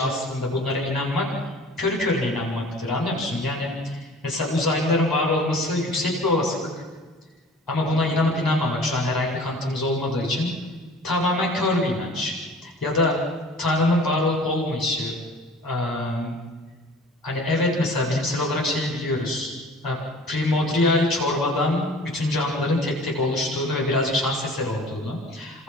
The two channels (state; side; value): normal; both; correlation 0.45